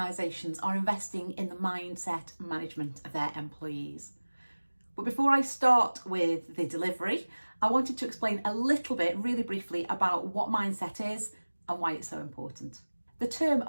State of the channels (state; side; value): inverted; both; correlation -1.00